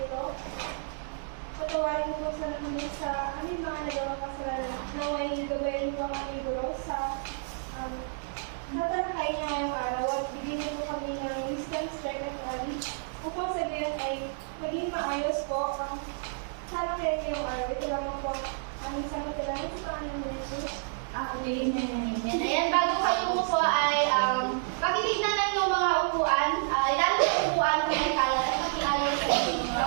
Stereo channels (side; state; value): left; silent; digital silence